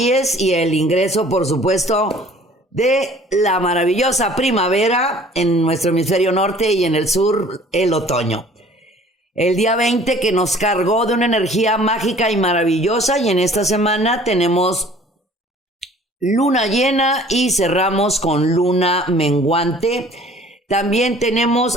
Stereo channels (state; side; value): normal; both; correlation 0.51